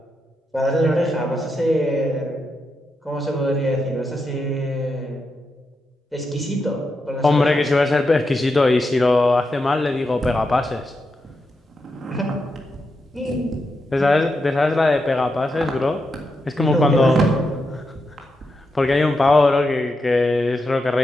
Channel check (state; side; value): normal; both; correlation 0.85